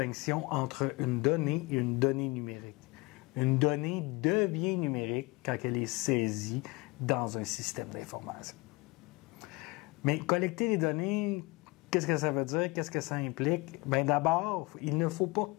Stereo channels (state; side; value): quieter; right; 24.5 dB